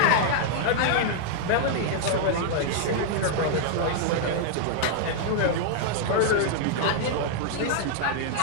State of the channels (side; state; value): both; different; correlation -0.01